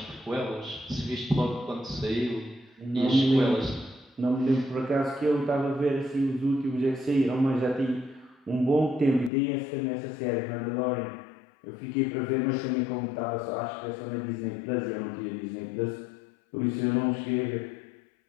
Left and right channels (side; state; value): right; drops out; at 9.3 s